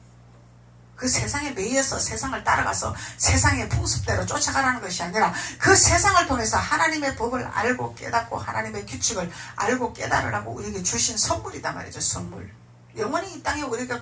그 세상에 매여서 세상을 따라가서 세상의 풍습대로 쫓아가라는 것이 아니라 그 세상을 통해서 하나님의 법을 알고 깨닫고 하나님의 규칙을 알고 깨달으라고 우리에게 주신 선물이다 말이죠. 선물. 영원히 이 땅에 우리가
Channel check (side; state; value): both; identical; correlation 1.00